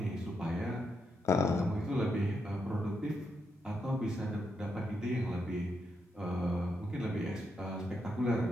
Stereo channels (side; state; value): both; normal; correlation 0.82